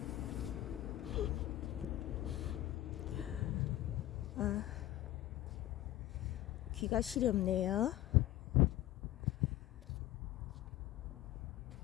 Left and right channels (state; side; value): quieter; right; 14.7 dB